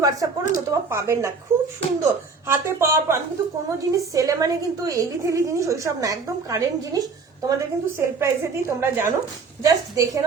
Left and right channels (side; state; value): left; quieter; 4.7 dB